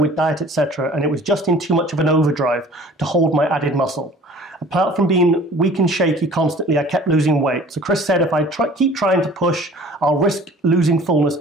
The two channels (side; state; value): both; normal; correlation 0.48